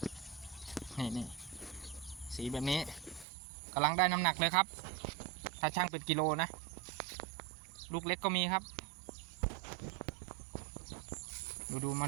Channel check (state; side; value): drops out; left; at 3.2 s